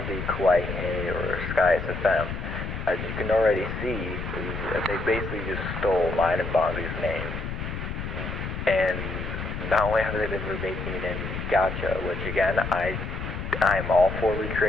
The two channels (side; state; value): left; noise; rumble, 5 dB below the sound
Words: Kawaii Hey or Sky SFM. As you can already see, they basically just stole mine and Bonzi's name. And not only have they been remaking in gacha, which again, I'm all for